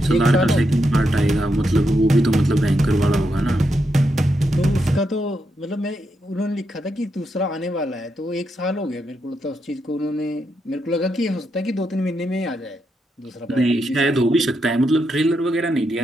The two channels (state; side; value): normal; both; correlation 0.83